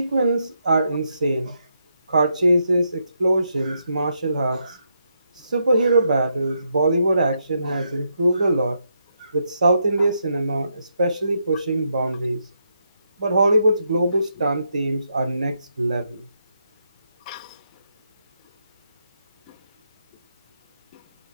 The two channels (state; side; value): inverted; both; correlation -0.80